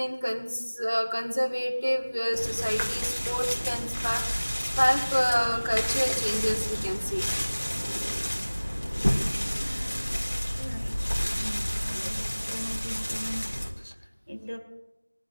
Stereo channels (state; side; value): inverted; both; correlation -1.00